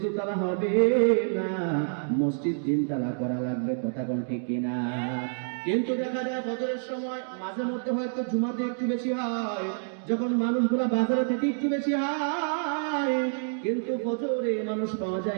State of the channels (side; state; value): left; silent; digital silence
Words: দুতলা হবে না, মসজিদ 3 তলা করা লাগবে। কথা কোন ঠিক কিনা? কিন্তু দেখা যায় ফজরের সময় মাঝে মধ্যে হয়তো জুমাতে একটু বেশি হয়, যখন মানুষগুলা বাজারে থেকে একটু বেশি হয়, কিন্তু ফজরে মানুষ পাওয়া